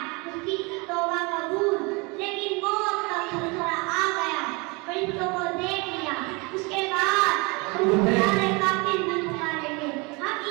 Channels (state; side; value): quieter; left; 28.0 dB